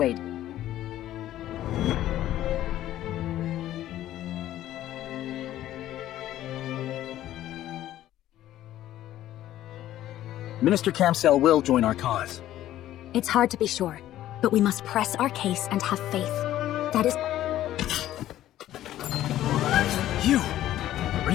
Minister Camsell will join our cause. It's hard to be sure, but we must press our case and have faith. That is... You! Are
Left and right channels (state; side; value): quieter; right; 13.3 dB